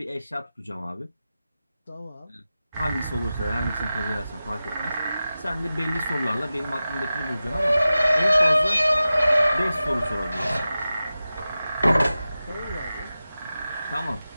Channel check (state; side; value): inverted; both; correlation -0.94